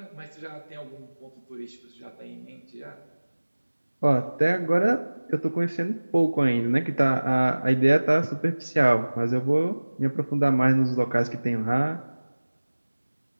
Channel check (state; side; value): inverted; both; correlation -1.00